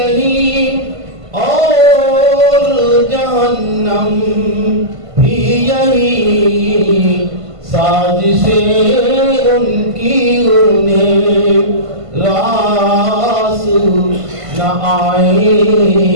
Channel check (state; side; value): late; left; 1.5 ms